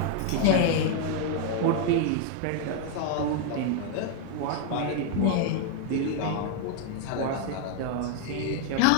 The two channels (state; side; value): different; both; correlation 0.00